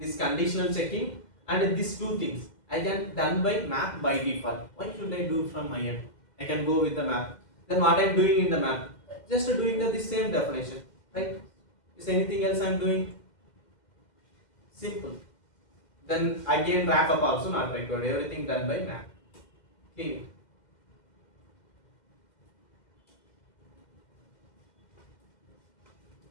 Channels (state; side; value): late; right; 2.1 ms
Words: this conditional checking, and these two things, I can done by map by default. Why should I do from my end? I can go with the map. Then what I am doing in the map, just doing the same definition, right? Is anything else I am doing? Simple. Then again wrap up also not required. Everything done by map. Clear.